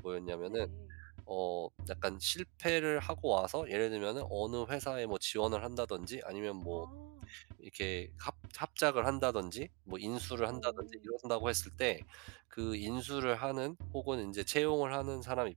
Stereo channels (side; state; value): left; quieter; 30.3 dB